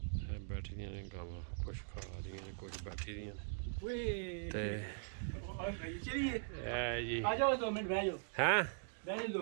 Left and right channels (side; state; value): left; silent; digital silence